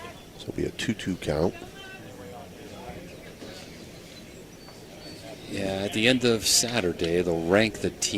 So it'll be a 2-2 count. Yeah, at the end of Saturday, they'll rank the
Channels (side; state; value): both; identical; correlation 1.00